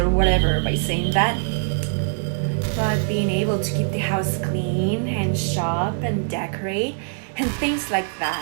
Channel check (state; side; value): silent; left; digital silence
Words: whatever by saying that. But being able to keep the house clean and shop and decorate and things like